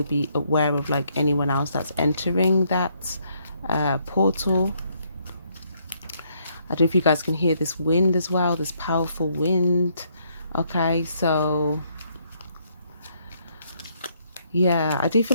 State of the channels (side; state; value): both; inverted; correlation -0.71